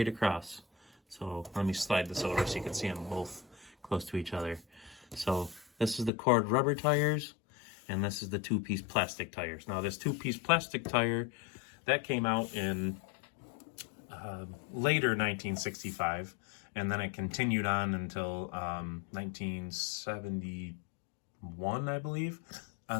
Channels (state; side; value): drops out; right; at 6.1 s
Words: across. So let me slide this over so you can see them both close to each other. So this is the cord rubber tires and this is the two-piece plastic tires. Now this two-piece plastic tire, that came out in later 1965, and then it continued on until 1971, I believe,